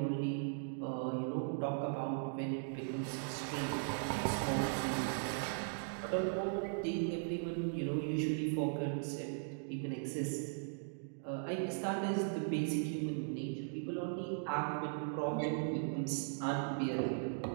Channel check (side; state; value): left; silent; digital silence